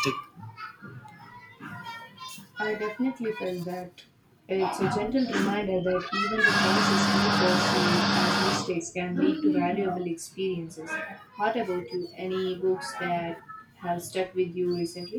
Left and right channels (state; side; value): identical; both; correlation 1.00